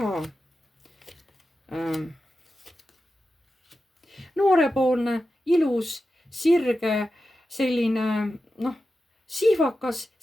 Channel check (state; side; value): normal; both; correlation 0.91